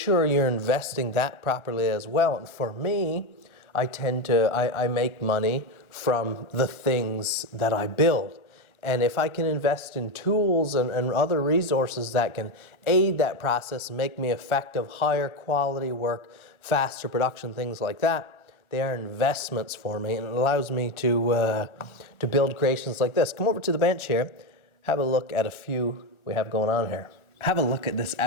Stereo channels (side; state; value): right; late; 1.3 ms